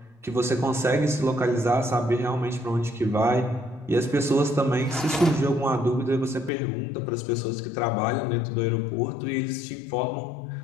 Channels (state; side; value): drops out; right; at 6.5 s